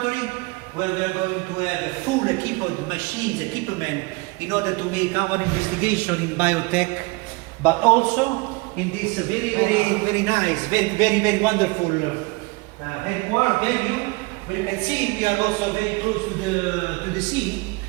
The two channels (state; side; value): quieter; left; 25.9 dB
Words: where we are going to have a full equipment machines, equipment, in order to make our investigation in biotech, but also in this very nice, very wonderful headquarters venue, where you can see we are also very close to the sea.